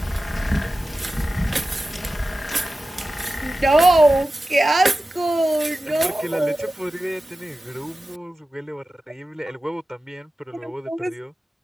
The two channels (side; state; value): both; normal; correlation 0.94